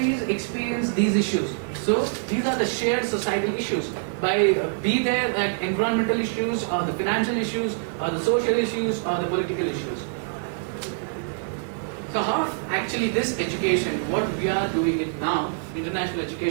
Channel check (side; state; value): left; silent; digital silence